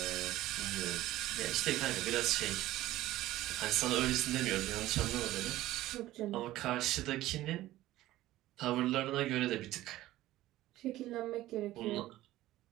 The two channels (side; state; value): left; quieter; 15.7 dB